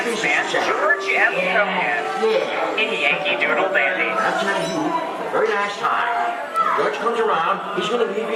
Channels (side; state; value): both; identical; correlation 1.00